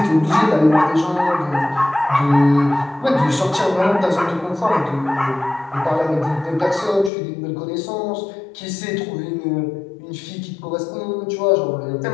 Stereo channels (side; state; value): right; drops out; at 7.1 s